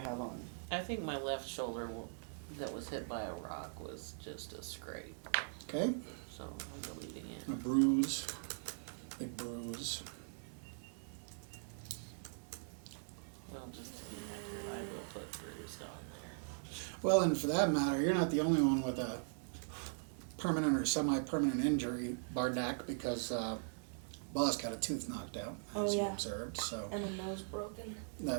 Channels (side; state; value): left; silent; digital silence